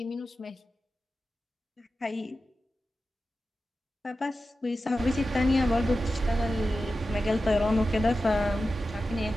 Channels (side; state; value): both; normal; correlation 0.92